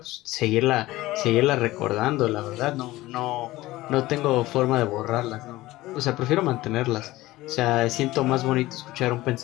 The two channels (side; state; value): right; quieter; 17.9 dB